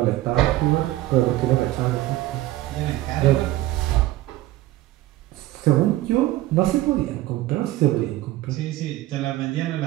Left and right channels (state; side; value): quieter; left; 16.2 dB